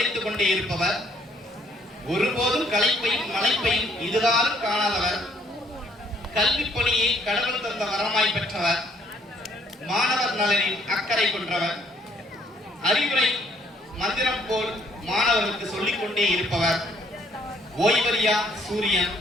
கொண்டே இருப்பவர், ஒருபோதும் களைப்பையும் மலைப்பையும் இதுகாலும் காணாதவர், கல்வி பணியை கடவுள் தந்த வரமாய் பெற்றவர், மாணவர் நலனில் அக்கறை கொண்டவர், அறிவுரை மந்திரம் போல் மாணவர்களுக்கு சொல்லிக் கொண்டே இருப்பவர், ஓய்வறியா சூரியன்,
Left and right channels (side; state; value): both; normal; correlation 0.64